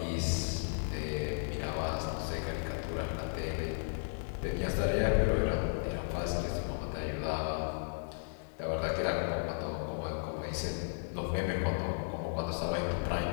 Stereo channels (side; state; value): right; silent; digital silence